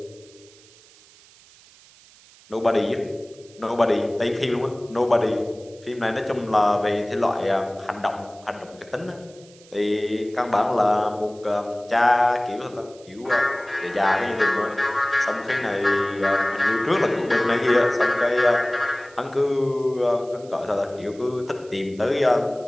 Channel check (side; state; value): right; noise; hiss, 25 dB below the sound